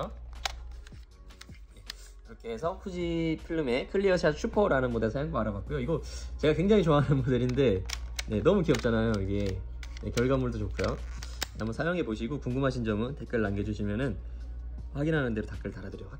네. 이렇게 해서 후지 필름의 클리어샷 슈퍼라는 모델 사용법 알아봤고요. 이거 제가 굉장히 좋아하는 모델인데 네, 너무 귀엽잖아요. 이게 네, 결과물도 좋고요. 한번 사용해 보시고 궁금하신 점은 댓글 남겨주시면은 확인하는 대로 댓글 달아드리도록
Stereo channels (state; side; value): identical; both; correlation 1.00